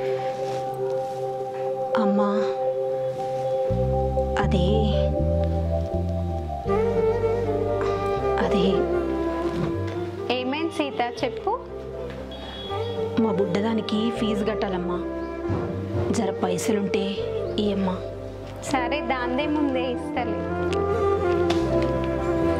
అమ్మా అదే ఏమైంది సీత, చెప్పు. మా బుడ్డదానికి ఫీజు కట్టాలమ్మా, జర పైసలుంటే ఇయ్యమ్మా. సరే, దాందే ముందే ఇస్తలే.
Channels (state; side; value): identical; both; correlation 1.00